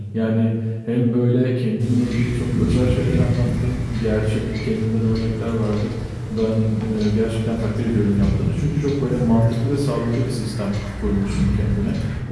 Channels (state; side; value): identical; both; correlation 1.00